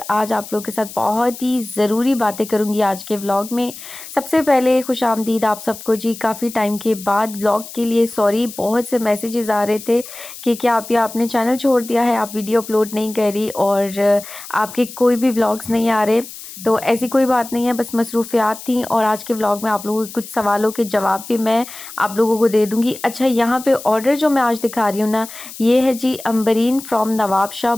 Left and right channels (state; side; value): noise; left; hiss, 14 dB below the sound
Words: आज आप लोग के साथ बहुत ही ज़रूरी बातें करूँगी आज के व्लॉग में। सबसे पहले खुशामदीद आप सबको जी। काफ़ी टाइम के बाद व्लॉग के लिए सॉरी, बहुत से मैसेजेस आ रहे थे कि क्या आप या आपने चैनल छोड़ दिया है, आप वीडियो अपलोड नहीं कर रही और आपके कोई भी व्लॉग्स नहीं आ रहे। तो ऐसी कोई बात नहीं है, बस मसरूफियात थी और आज के व्लॉग में आप लोगों के कुछ सवालों के जवाब भी मैं आप लोगों को दे दूंगी। अच्छा, यहाँ पे ऑर्डर जो मैं आज दिखा रही हूँ ना, ये है जी अम्बरीन फ्रॉम नवाबशाह।